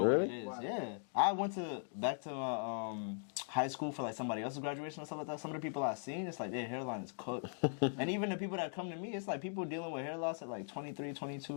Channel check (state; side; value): silent; right; digital silence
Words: Really? what it is. Wow. Yeah, I went back to my high school for like somebody else's graduation and stuff like that, some of the people I've seen, it's like their hairline is cooked. And even the people that come to me, it's like people dealing with hair loss at like 23,